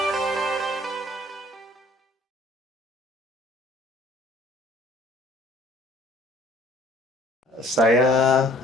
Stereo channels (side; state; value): both; normal; correlation 0.55